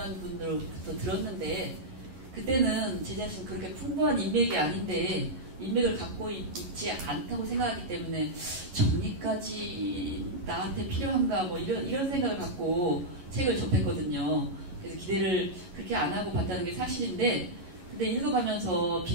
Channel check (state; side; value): late; left; 11 ms